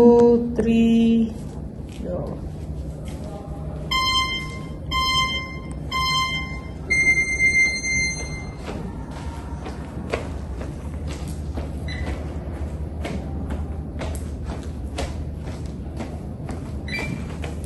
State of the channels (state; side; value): identical; both; correlation 1.00